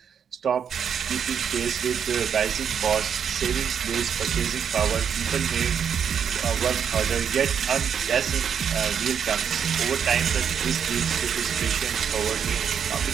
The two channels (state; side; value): quieter; left; 7.7 dB